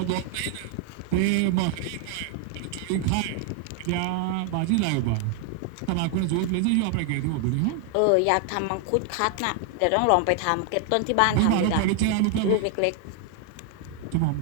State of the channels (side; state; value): both; different; correlation 0.00